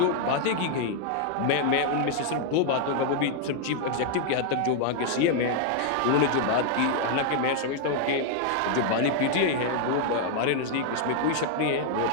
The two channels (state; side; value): different; both; correlation 0.00